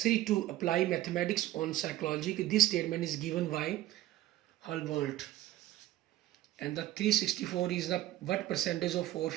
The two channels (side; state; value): left; quieter; 14.7 dB